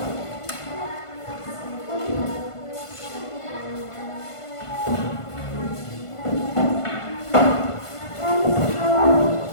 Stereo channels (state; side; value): late; right; 1.5 ms